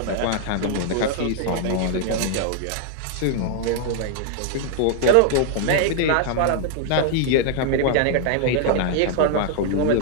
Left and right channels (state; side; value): different; both; correlation 0.00